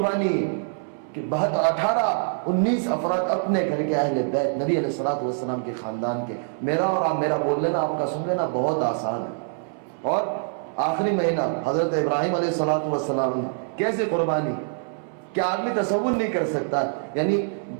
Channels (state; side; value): silent; left; 62 dB below the other